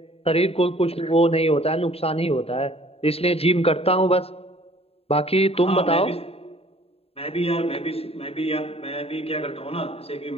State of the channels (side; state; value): right; late; 0.29 ms